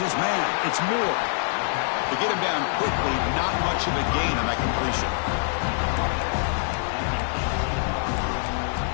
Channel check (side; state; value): right; silent; 62 dB below the other